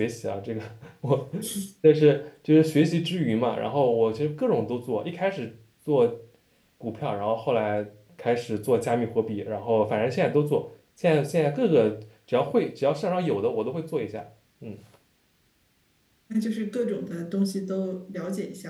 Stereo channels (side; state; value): both; identical; correlation 1.00